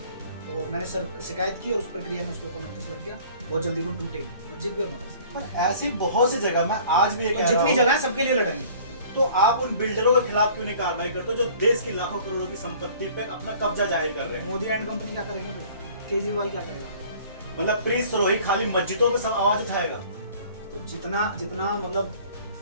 और मैंने शिकायत की और उस प्रक्रिया में उसके ऊपर नोटिस लग गया। बहुत जल्दी वो टूटेगी मस्जिद भी और मदरसा। पर ऐसी बहुत सी जगह, मैं आज भी ये कह रहा जितनी हूं, जगह है सबके लिए लड़ेंगे। तो आप उन बिल्डरों के खिलाफ क्यों नहीं कार्रवाई करते हो जो देश की लाखों करोड़ों की संपत्ति पे अपना कब्जा जाहिर कर रहे हैं? मोदी एंड कंपनी क्या करेंगे फिर? केजरीवाल क्या करेगा? मतलब प्रीत सरोही खाली मस्जिदों पे सब आवाज उठाएगा? तो जितना मतलब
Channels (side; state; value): both; inverted; correlation -0.51